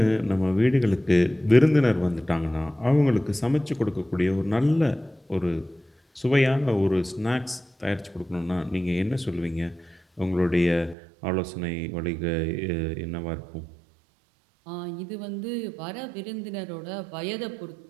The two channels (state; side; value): drops out; left; at 11.0 s